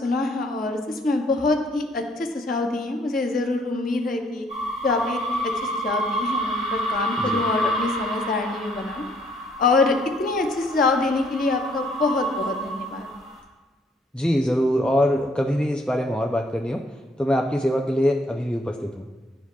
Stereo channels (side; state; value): both; normal; correlation 0.65